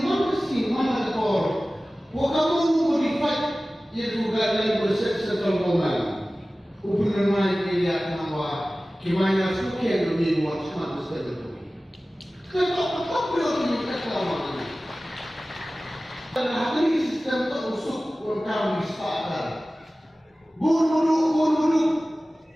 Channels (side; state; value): both; normal; correlation 0.97